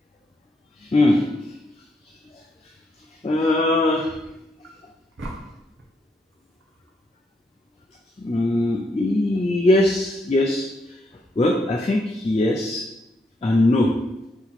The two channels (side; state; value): both; normal; correlation 0.77